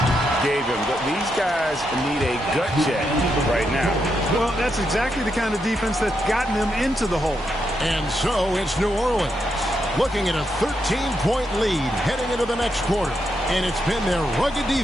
gave him. But these guys need a gut check right now. Well, that's exactly the kind of defense that's gotten them into the hole. And so it's New Orleans looking at a 13-point lead heading into the next quarter. And it's been their rugged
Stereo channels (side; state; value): both; normal; correlation 0.82